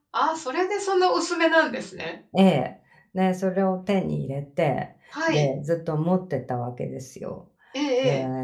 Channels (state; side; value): identical; both; correlation 1.00